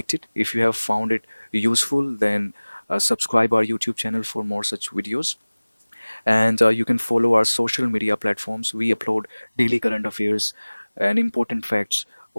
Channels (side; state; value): both; inverted; correlation -1.00